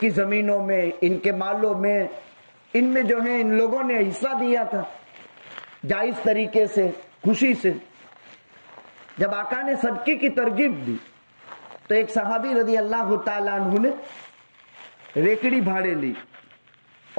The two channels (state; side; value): inverted; both; correlation -1.00